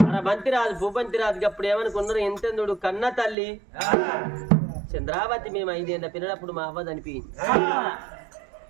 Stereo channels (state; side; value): drops out; left; at 3.4 s